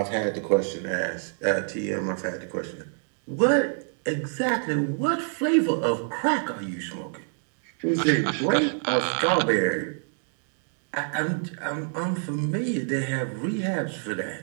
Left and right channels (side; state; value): left; silent; digital silence